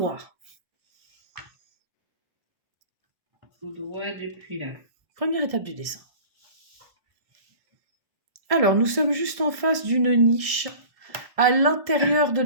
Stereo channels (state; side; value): late; left; 1.6 ms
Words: Tout droit depuis là. Première étape du dessin. Alors, nous sommes juste en face d'une niche. À l'intérieur de